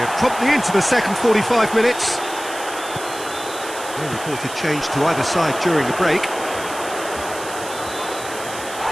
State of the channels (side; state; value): right; noise; hiss, 12 dB below the sound